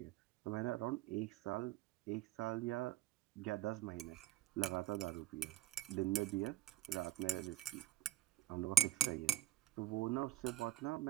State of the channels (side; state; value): left; quieter; 12.4 dB